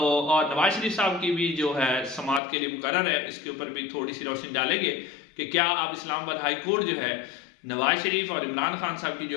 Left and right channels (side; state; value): right; drops out; at 2.4 s